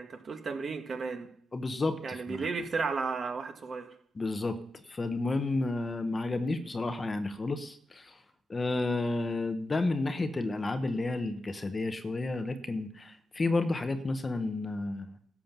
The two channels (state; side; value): normal; both; correlation 0.90